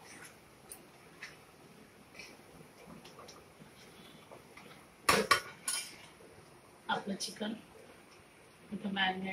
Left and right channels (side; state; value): both; identical; correlation 1.00